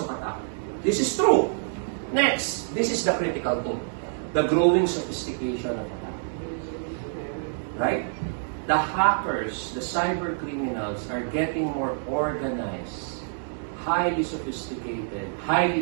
attack. This is true. Next, this is the critical thing. The growing sophistication of attack. Right? The hackers, the cyber criminals are getting more organized, highly sophisticated,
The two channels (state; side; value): silent; left; digital silence